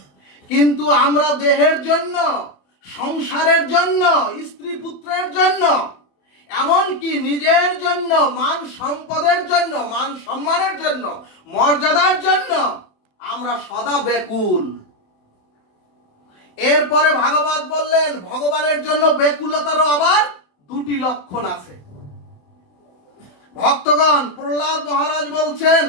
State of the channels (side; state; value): right; late; 28 ms